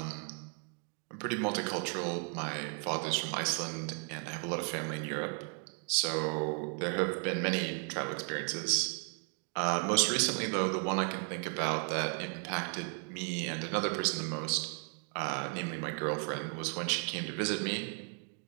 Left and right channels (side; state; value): left; quieter; 40.0 dB